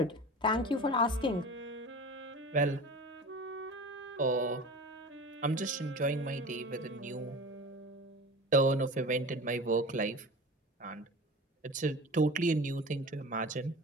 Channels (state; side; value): normal; both; correlation 0.35